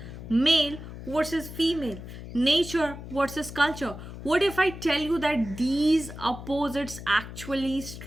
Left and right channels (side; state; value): left; noise; hum, 12 dB below the sound